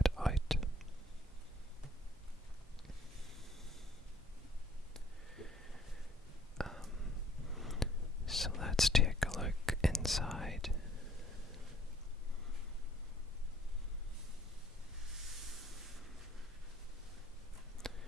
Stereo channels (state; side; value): normal; both; correlation 0.60